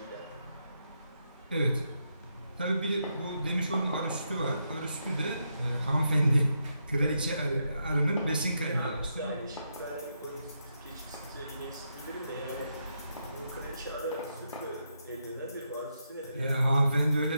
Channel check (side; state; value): both; inverted; correlation -0.82